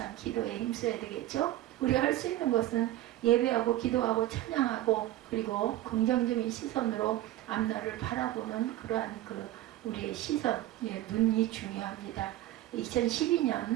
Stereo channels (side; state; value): left; quieter; 14.7 dB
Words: 기도에 힘써야 되겠죠. 우리가 할 수 있는 것은 예배하고 기도하고 찬양하고 그리고 긍정적인 시선으로 앞날을 바라보는 그러한 우리의 시선, 눈이 중요합니다.